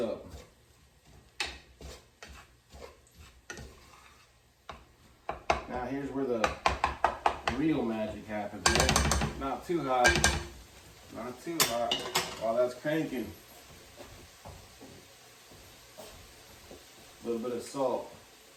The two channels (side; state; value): both; identical; correlation 1.00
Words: Now here's where the real magic happens, right? Not too hot, not too hot. While that's cranking. A little bit of salt.